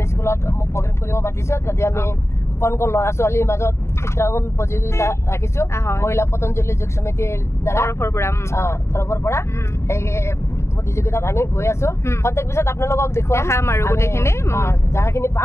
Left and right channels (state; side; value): late; right; 0.13 ms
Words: স্কুলত মোক প্ৰগ্ৰাম কৰিব মাতিছো যদি আমি কোন ল'ৰা ছোৱালীৰ মাজত চিত্ৰাংকন প্ৰতিযোগিতা ৰাখিছো মহিলা পতঞ্জলি যোগ সমিতিৰ তৰফৰ পৰা এই প্ৰতিযোগিতাত আমি গৈ আছো প্ৰত্যেক পিছত আপোনালোকক দেখাম আৰু গোটেইখিনি যাখিনি